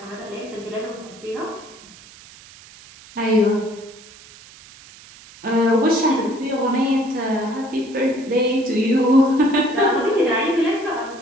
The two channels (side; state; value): right; noise; hiss, 21 dB below the sound